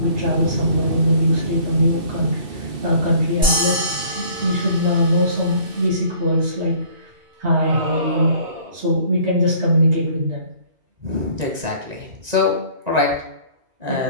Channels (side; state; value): left; late; 2.3 ms